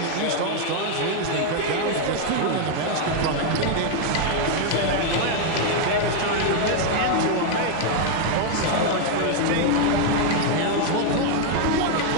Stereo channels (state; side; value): different; both; correlation 0.00